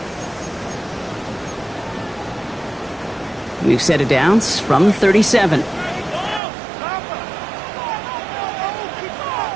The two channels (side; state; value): left; drops out; at 6.4 s